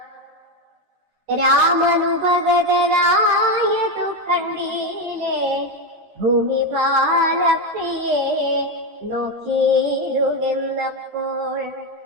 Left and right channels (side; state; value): left; late; 13 ms